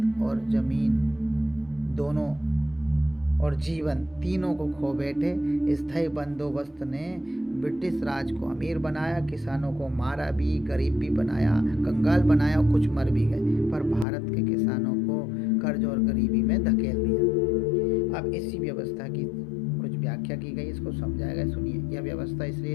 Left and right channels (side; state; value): right; drops out; at 14.1 s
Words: और जमीन दोनों और जीवन तीनों को खो बैठे। स्थायी बंदोबस्त ने ब्रिटिश राज को अमीर बनाया, किसानों को मारा भी, गरीब भी बनाया, कंगाल बनाया और कुछ मर भी गए, पर भारत के किसानों को कर्ज और गरीबी में धकेल दिया। अब इसी व्यवस्था की कुछ व्याख्या की गई, इसको समझाया गया, सुनिए। यह व्यवस्था इसलिए